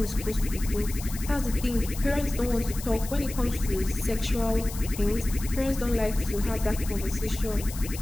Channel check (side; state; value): left; noise; hiss, 12 dB below the sound